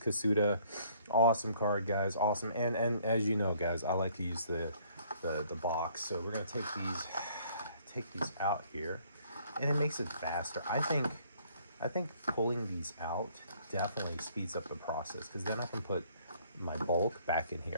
Awesome card, guys. Awesome. And as you know, guys, I like to use the box. So we're gonna take these out here, and it makes it faster. I think I think pulling these out definitely speeds up the process, because then I can put my bulk back in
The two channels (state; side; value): inverted; both; correlation -0.62